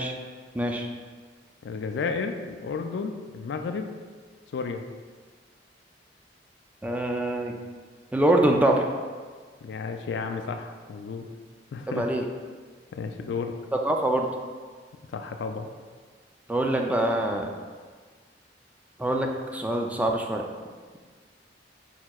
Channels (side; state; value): both; normal; correlation 0.60